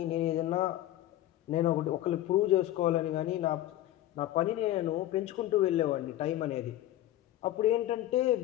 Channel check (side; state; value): right; quieter; 14.0 dB